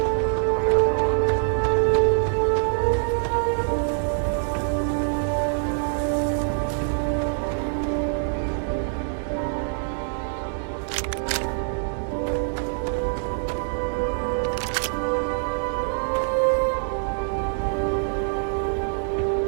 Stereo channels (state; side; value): silent; left; digital silence